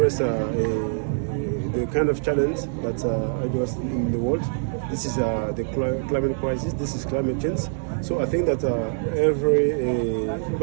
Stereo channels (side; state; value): left; silent; 62 dB below the other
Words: the kind of challenge that address in the world, this is the climate crisis, this is climate change. So I think that